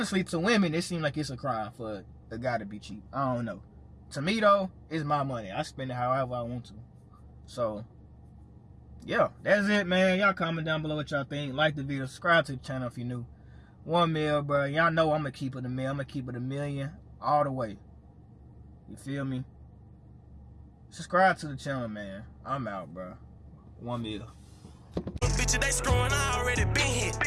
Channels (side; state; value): both; identical; correlation 1.00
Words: to women, it seems like it's a crime for a guy to be cheap. I don't know. To me, though, it's my money. I spend it however I want to. So, yeah, that's it, man. Y'all comment down below what y'all think. Like the video. Subscribe to the channel if you're new. 1 mil, bro. Y'all know I'm going to keep it a mil. I'm going to keep it a million all the way. You feel me? Subscribe to the channel, man. I'm out, bro. 1 mil. Bitches, they screwing, I already been hit.